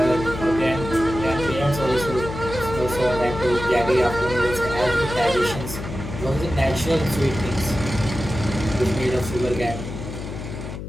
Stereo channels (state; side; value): noise; left; hum, 8 dB below the sound